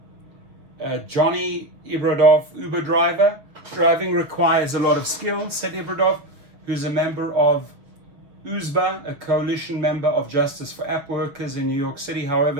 Johnny Ibradov, Uber driver, driving requires a lot of skill, said Ibradov, who's a member of USBA, a coalition member of Justice for App Workers in New York City.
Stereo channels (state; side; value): late; left; 7.0 ms